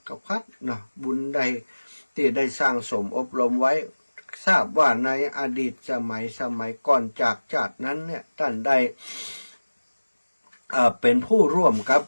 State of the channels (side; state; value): both; inverted; correlation -1.00